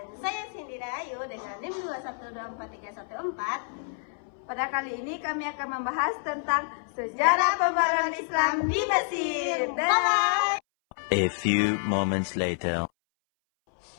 saya Cindy Ayu dengan NIM 21243114. Pada kali ini kami akan membahas tentang sejarah pembaruan Islam di Mesir. Bye! A few moments later.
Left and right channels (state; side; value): silent; right; 59 dB below the other